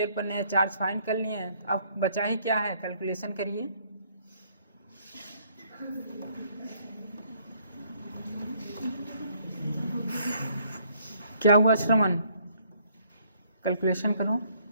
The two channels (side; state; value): both; inverted; correlation -0.65